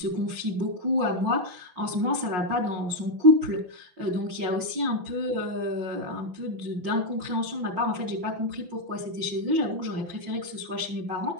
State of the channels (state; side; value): late; left; 5.6 ms